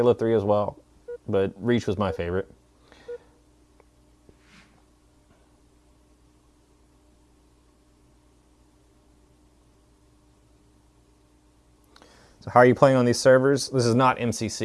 3 as well. but Reach was my favorite. So how are you playing on these servers? This is not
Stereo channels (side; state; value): both; identical; correlation 1.00